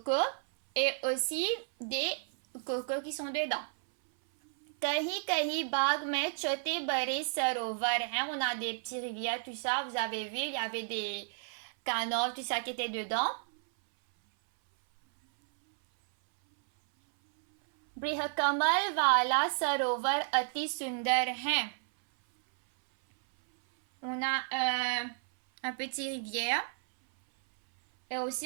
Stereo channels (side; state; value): left; silent; 56 dB below the other